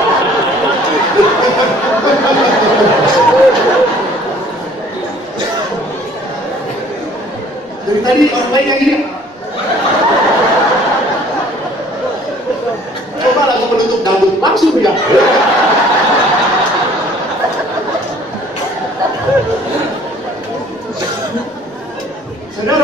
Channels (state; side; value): normal; both; correlation 0.55